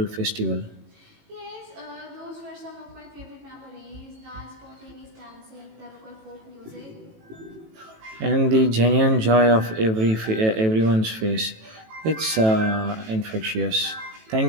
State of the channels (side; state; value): left; late; 18 ms